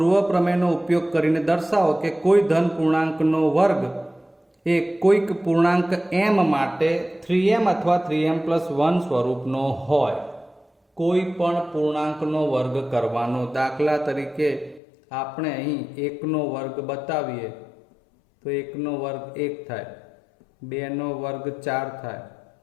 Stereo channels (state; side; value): drops out; right; at 14.8 s